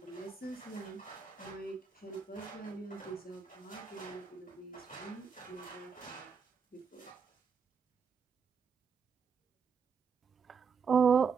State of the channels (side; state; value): left; quieter; 5.9 dB